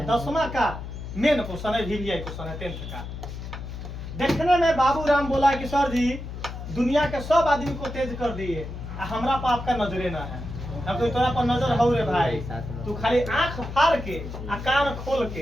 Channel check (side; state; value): left; noise; hum, 9 dB below the sound